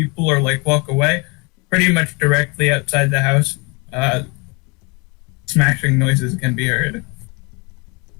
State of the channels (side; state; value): right; quieter; 29.5 dB